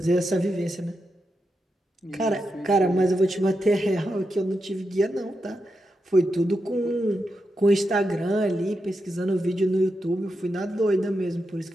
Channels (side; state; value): both; normal; correlation 0.87